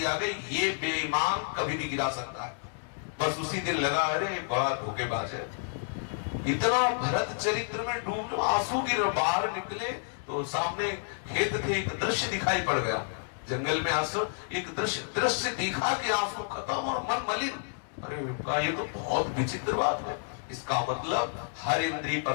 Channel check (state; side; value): silent; right; digital silence